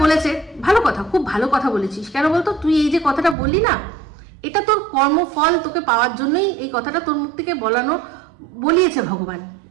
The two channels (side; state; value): left; drops out; at 3.4 s